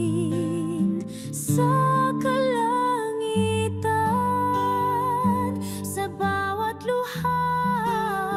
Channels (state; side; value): identical; both; correlation 1.00